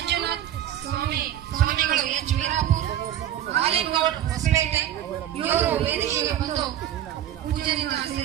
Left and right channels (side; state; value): left; quieter; 11.5 dB